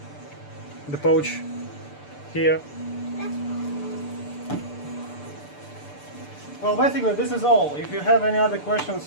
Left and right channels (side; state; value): right; late; 6.8 ms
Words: the pouch here. Well, basically this is all. If you have any other